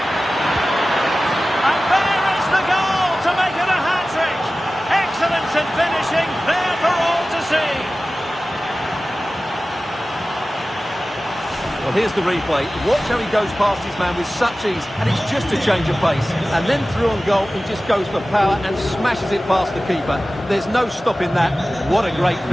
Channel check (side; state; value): both; normal; correlation 0.96